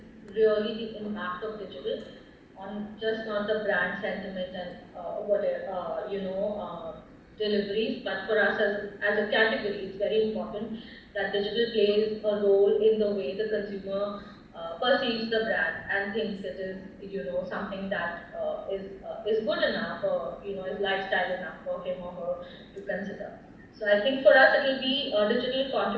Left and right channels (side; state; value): both; identical; correlation 1.00